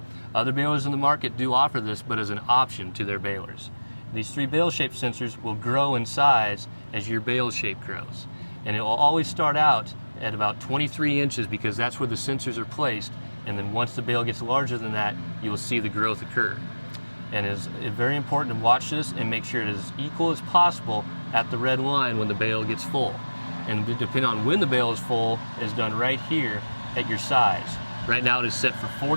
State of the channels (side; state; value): both; inverted; correlation -1.00